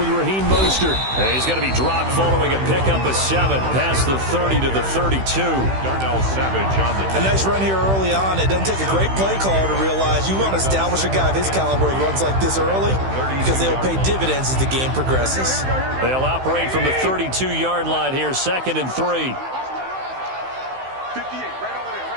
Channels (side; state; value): left; late; 15 ms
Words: Raheem Mostert. And he's going to be dropped following a pickup of 7 past the 30 to the 32. Darnell Savage on the A nice run here early on. It doesn't take a great play caller to realize you want to establish a guy of his caliber who runs like this early because they'll pay dividends as the game progresses. They'll operate from the 32-yard line here, 2nd and 3.